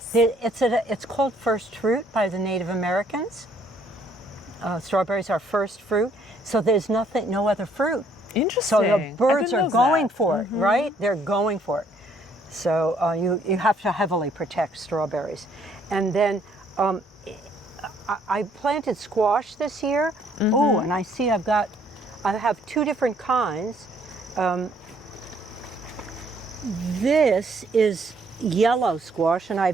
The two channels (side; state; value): both; normal; correlation 0.65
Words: called first fruit by the Native Americans. Strawberries are first fruit, so there's no other fruit. Interesting. So the birds are going for it, right? They're going for it. So you have to heavily protect strawberries. And then I planted squash this year. Oh, and I see I have 2 different kinds. This is yellow squash, and